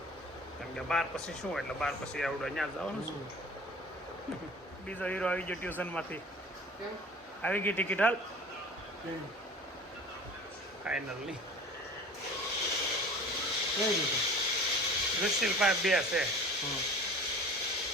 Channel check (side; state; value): both; normal; correlation 0.42